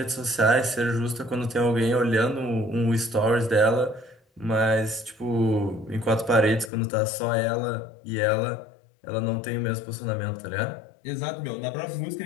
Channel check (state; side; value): drops out; right; at 6.7 s